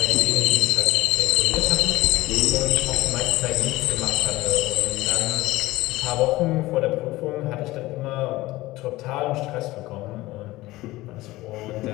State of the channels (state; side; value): quieter; right; 18.5 dB